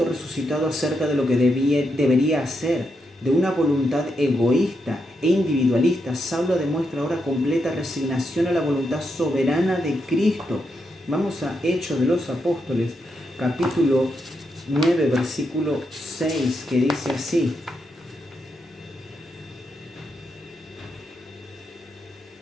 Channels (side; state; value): both; normal; correlation 0.83